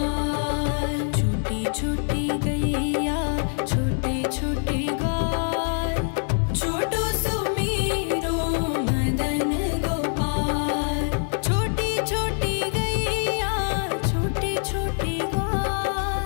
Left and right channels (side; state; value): right; silent; 62 dB below the other